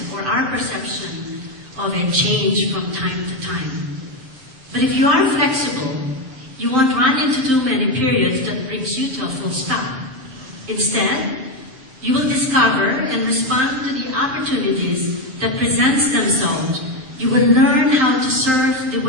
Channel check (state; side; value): late; left; 7.6 ms